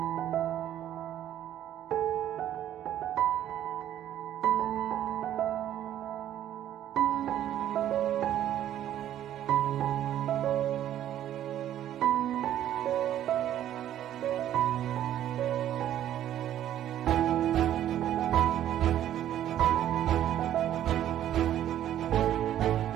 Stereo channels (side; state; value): left; quieter; 11.6 dB